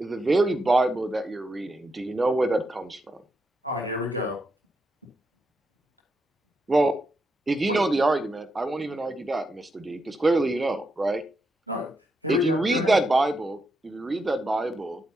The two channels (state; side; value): normal; both; correlation 0.83